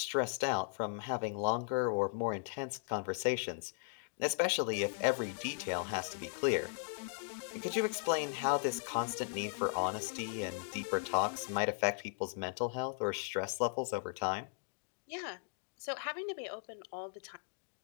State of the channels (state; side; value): silent; right; digital silence